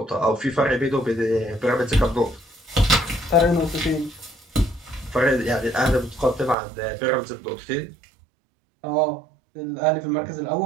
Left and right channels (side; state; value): left; drops out; at 6.6 s